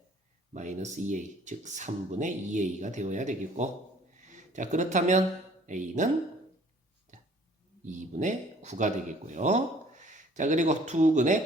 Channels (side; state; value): both; normal; correlation 0.55